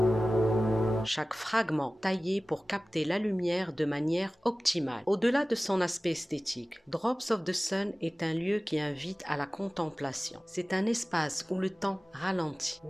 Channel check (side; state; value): both; normal; correlation 0.97